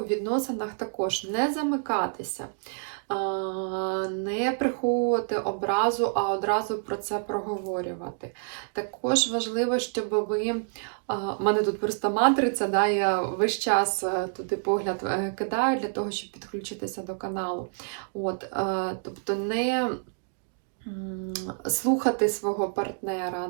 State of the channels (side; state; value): left; silent; digital silence